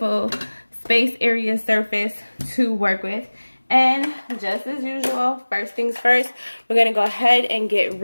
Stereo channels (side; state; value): both; inverted; correlation -1.00